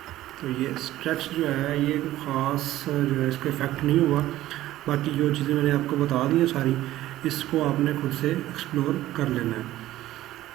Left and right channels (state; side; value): quieter; left; 14.9 dB